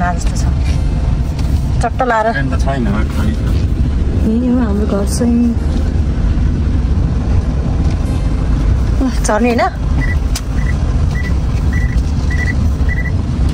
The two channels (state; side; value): identical; both; correlation 1.00